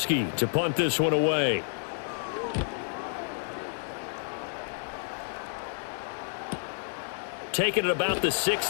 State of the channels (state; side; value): silent; right; 58 dB below the other